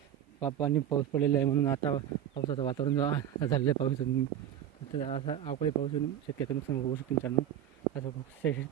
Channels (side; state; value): left; quieter; 10.4 dB